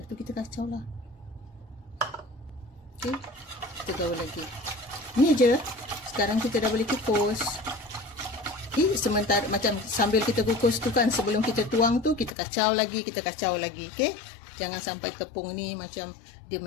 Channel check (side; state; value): right; drops out; at 12.4 s